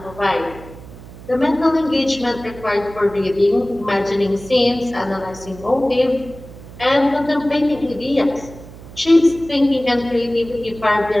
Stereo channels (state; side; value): noise; right; hum, 17 dB below the sound